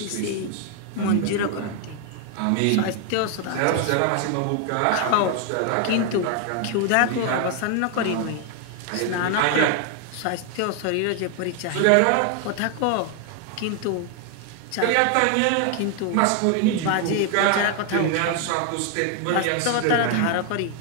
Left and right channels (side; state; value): both; different; correlation 0.00